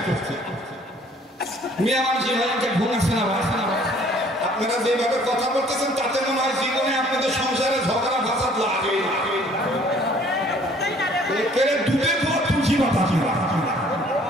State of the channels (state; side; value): normal; both; correlation 0.57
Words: মিয়া মানুষ এভাবে ঘুম আসে না। আপনারা যেভাবে কথা বলতেছেন তাতে মনে হয় জীবনে আপনাদের সংসারে ঝগড়া ফাসাদ লাগে। ডুবে তুলছি মাথা